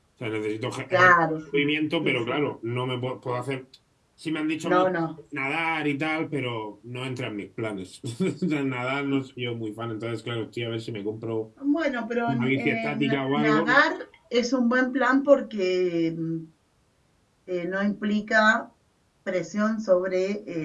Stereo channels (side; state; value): both; identical; correlation 1.00